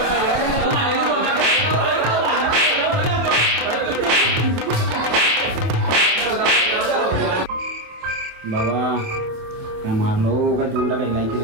बाबा काय मारलो काय तोंडा काय लायकी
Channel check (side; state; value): left; late; 27 ms